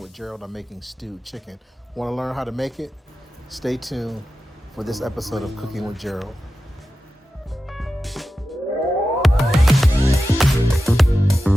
with Gerald, I'm making stewed chicken. Want to learn how to make it? Stay tuned for this episode of Cooking with Gerald.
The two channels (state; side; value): normal; both; correlation 0.92